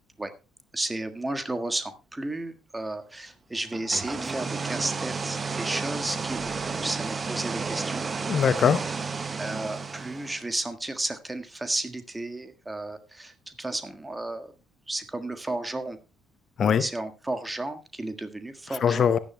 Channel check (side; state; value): both; normal; correlation 0.82